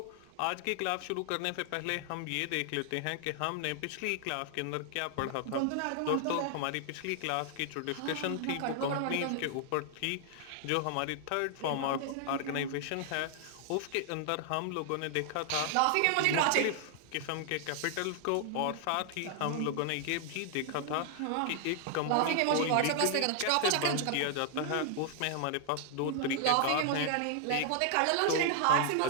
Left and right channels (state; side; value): different; both; correlation 0.00